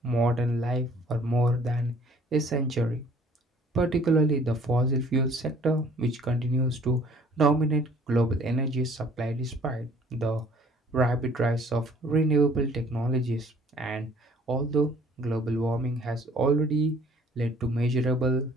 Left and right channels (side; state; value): both; normal; correlation 0.56